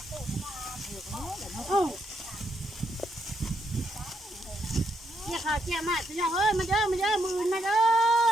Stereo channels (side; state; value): both; normal; correlation 0.77